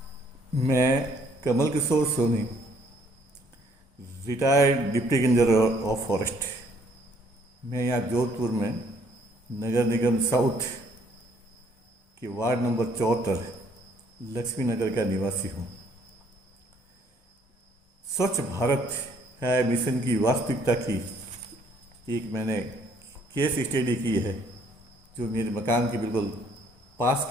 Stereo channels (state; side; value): normal; both; correlation 0.64